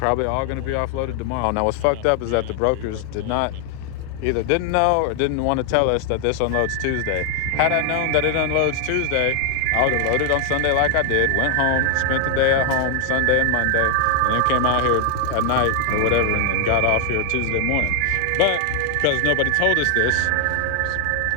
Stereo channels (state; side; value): different; both; correlation 0.00